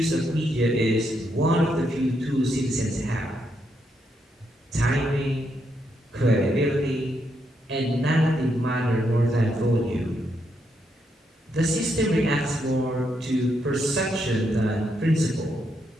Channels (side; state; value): both; normal; correlation 0.79